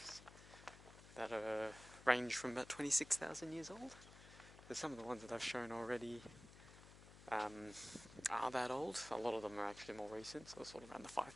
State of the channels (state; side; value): noise; left; hum, 17 dB below the sound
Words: that range from about 26,000 years old. So some of the ones that I've shown already are that old. A lot of them are actually more recent, so sort of around the